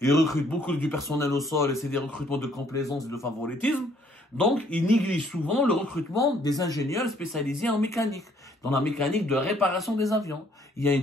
Ils recrutent beaucoup du personnel au sol et c'est des recrutements de complaisance et de favoritisme. Donc, ils négligent souvent le recrutement des ingénieurs spécialisés en mécanique, dans la mécanique de réparation des avions. Il y a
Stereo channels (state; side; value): normal; both; correlation 0.64